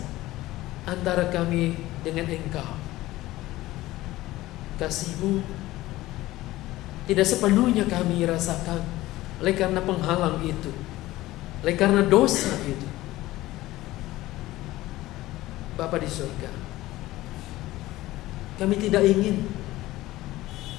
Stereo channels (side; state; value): right; quieter; 17.1 dB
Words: antara kami dengan Engkau. Kasih-Mu tidak sepenuhnya kami rasakan oleh karena penghalang itu, oleh karena dosa itu. Bapa di surga, kami tidak ingin